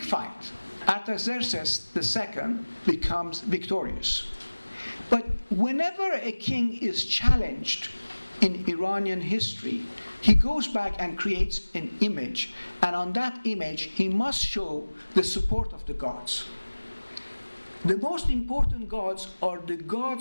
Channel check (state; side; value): inverted; both; correlation -1.00